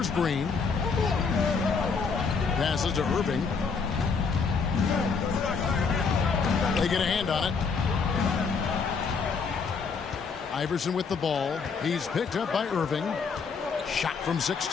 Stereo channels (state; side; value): quieter; right; 5.3 dB